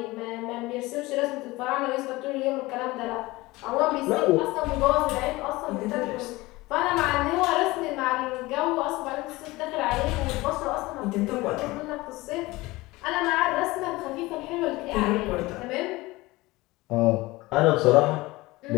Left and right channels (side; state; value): right; quieter; 20.6 dB